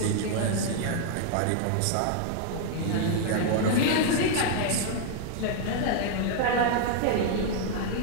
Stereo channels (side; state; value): both; different; correlation 0.00